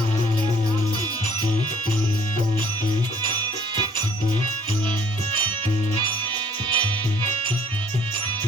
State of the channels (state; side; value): normal; both; correlation 0.60